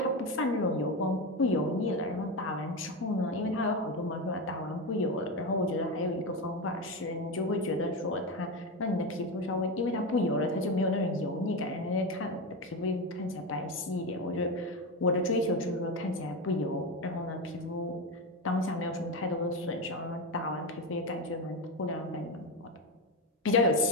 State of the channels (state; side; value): normal; both; correlation 0.15